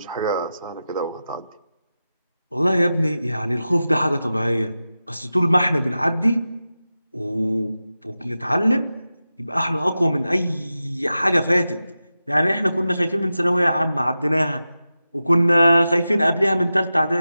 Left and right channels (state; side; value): inverted; both; correlation -0.93